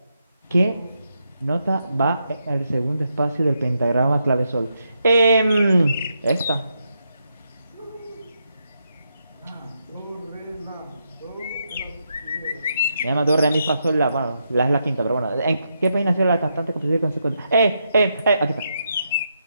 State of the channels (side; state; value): both; inverted; correlation -0.82